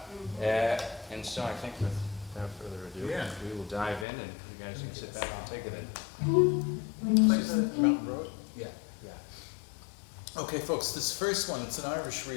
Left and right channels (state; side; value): drops out; right; at 4.0 s